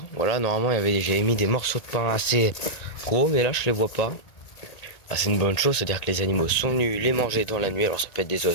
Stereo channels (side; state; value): right; late; 1.8 ms